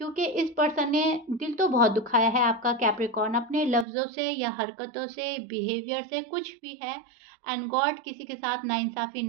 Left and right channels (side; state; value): left; drops out; at 3.9 s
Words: इस पर्सन ने दिल तो बहुत दुखाया है आपका कैप्रिकॉर्न अपने लफ्ज़ों से या हरकतों से बिहेवियर से कुछ भी है एंड गॉड किसी के साथ नाइंसाफ़ी